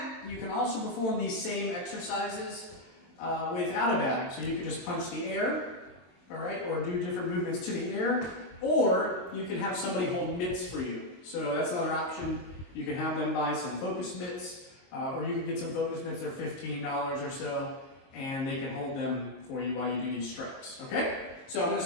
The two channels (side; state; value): right; late; 23 ms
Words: You can also perform these same exercises without a bag. So you can just punch the air, all right, or do different movements to the air, or you can have somebody hold mitts for you. So that's another option. You can have them buy some focus mitts, or you can get some focus mitts. They're $15 or so, and they can hold them for you while you do these strikes, okay? So I'm going to